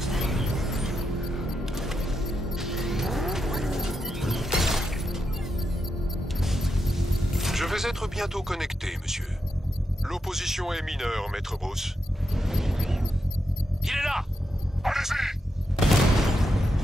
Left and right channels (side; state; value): both; normal; correlation 0.85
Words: Je vais être bientôt connecté, monsieur. L'opposition est mineure, maître Bruce. Il est là! Allez-y!